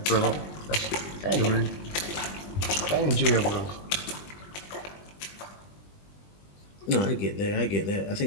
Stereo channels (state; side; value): late; right; 20 ms